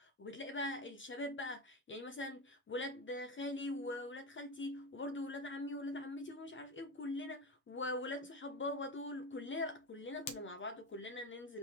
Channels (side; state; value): both; normal; correlation 0.20